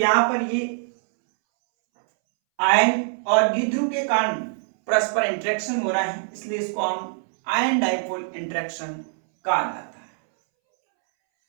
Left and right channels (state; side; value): silent; left; 63 dB below the other